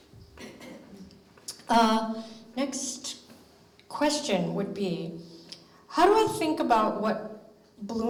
next question would be, how do I think about what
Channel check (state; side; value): identical; both; correlation 1.00